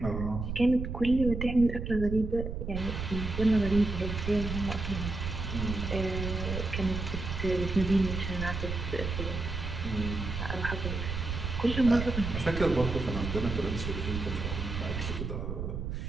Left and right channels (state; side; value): noise; right; rumble, 4 dB below the sound